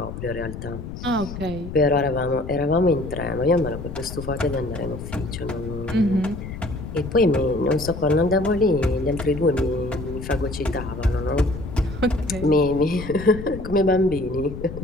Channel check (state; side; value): noise; left; rumble, 9 dB below the sound